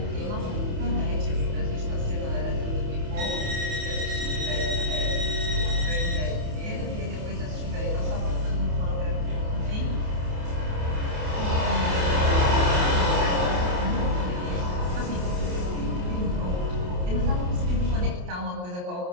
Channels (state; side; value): late; left; 28 ms